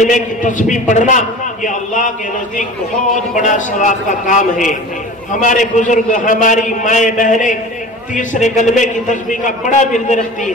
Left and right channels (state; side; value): normal; both; correlation 0.38